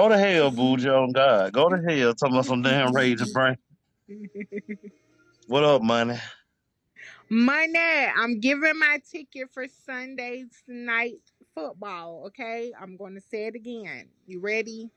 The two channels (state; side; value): identical; both; correlation 1.00